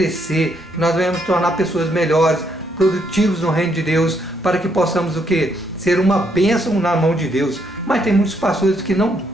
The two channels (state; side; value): normal; both; correlation 0.74